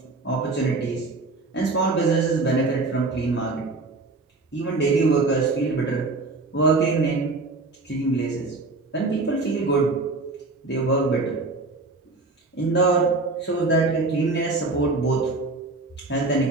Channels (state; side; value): quieter; left; 3.5 dB